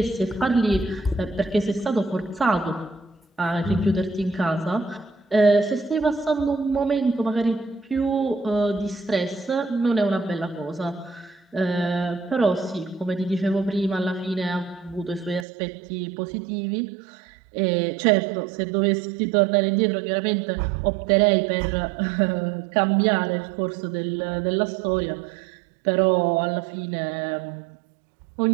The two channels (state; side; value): drops out; left; at 15.5 s